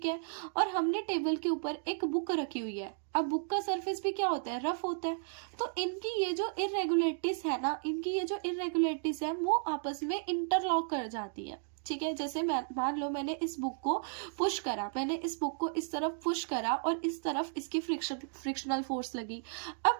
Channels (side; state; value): left; silent; digital silence